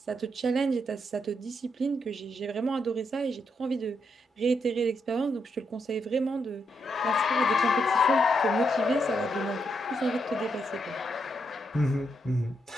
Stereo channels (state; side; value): normal; both; correlation 0.80